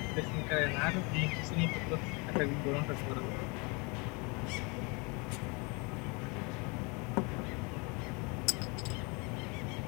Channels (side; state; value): right; quieter; 29.7 dB